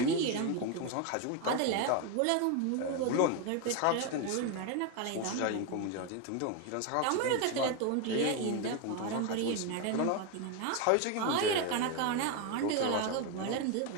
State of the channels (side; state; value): both; different; correlation 0.02